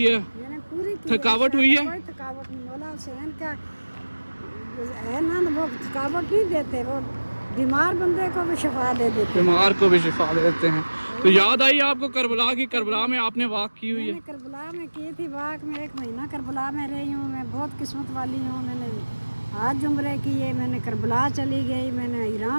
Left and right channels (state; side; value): inverted; both; correlation -1.00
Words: है, थकावट हुई है? कोई थकावट नहीं, मौला हुसैन का है ना, वो थकावट नहीं देते, वो बीमार बंदे को भी शिफा दे देते, बीमार को भी शिफा देते हैं। तो याद आई आपको करबला की? करबला में आपने वॉक की हुई है? करबला में की थी वॉक, में 1 महीना करबला में रही हूँ, मैं बहुत किस्मत वाली हूँ। मैंने आज उम्रे किए, मैंने करबला चली गई, मैंने